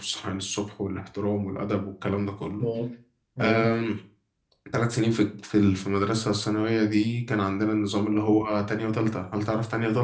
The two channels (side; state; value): both; identical; correlation 1.00